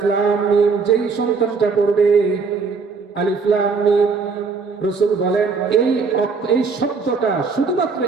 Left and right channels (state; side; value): quieter; left; 4.9 dB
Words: লাম মিম যেই সন্তানটা পড়বে, আলিফ লাম মিম, রাসূল বলেন এই শব্দটা, শুধুমাত্র